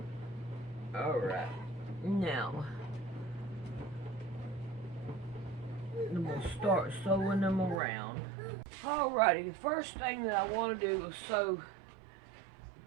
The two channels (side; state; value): left; drops out; at 7.8 s